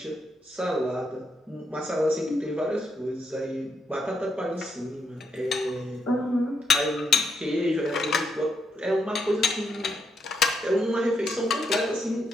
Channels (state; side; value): normal; both; correlation 0.79